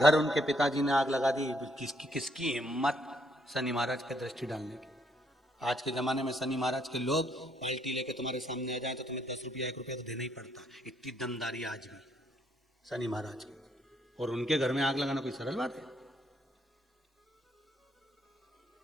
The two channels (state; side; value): normal; both; correlation 0.71